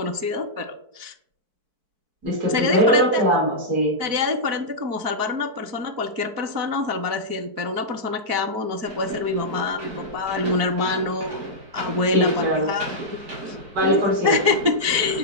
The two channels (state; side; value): late; left; 4.5 ms